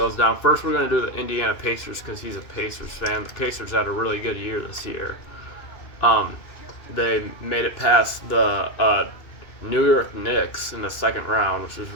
down. First, we're going to do the Indiana Pacers because he's a Pacers fan. The Pacers had a really good year this year. Um, they made it past the New York Knicks in the second round, which was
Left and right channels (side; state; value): right; late; 2.6 ms